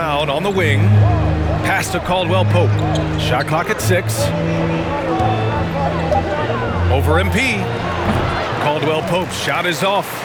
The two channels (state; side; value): identical; both; correlation 1.00